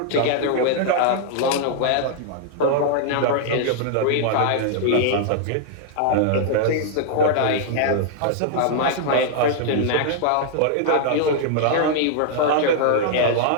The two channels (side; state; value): both; different; correlation -0.01